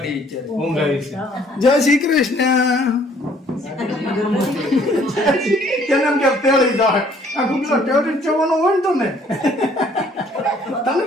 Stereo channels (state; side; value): normal; both; correlation 0.60